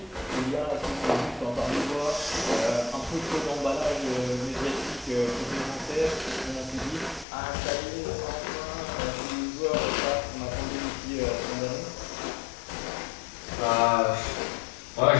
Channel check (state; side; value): drops out; right; at 7.2 s